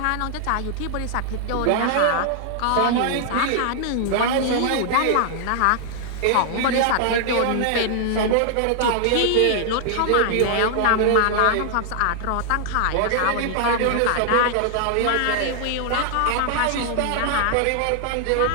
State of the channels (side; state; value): both; different; correlation -0.01